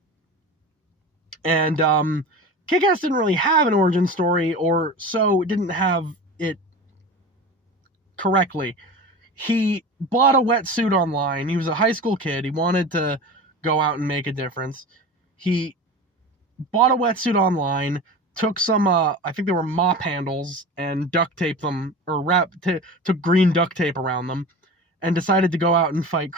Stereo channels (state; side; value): normal; both; correlation 0.32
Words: And Kick-Ass didn't really have an origin story, or so didn't have it correctly. He bought a wetsuit online. He was a high school kid. He wanted to go out and make a difference. He bought a wetsuit online, took some, I think they were mop handles, and duct taped them, or took green duct tape around them, and decided to go out and fight